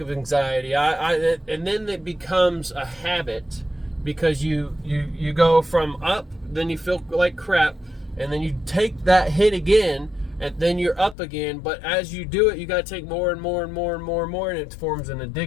of anxiety. And then it becomes a habit, because you go from up, then you feel like crap, and then you take that hit again, and then you're up again. But as you do it, you got to take more and more and more and more and more, and it forms an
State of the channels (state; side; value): drops out; right; at 11.2 s